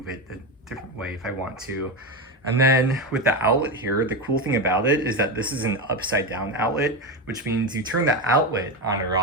it a different way if I want to. And then with the outlet here, the cool thing about it is that this is an upside down outlet, which means you turn the outlet on or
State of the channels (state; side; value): normal; both; correlation 0.15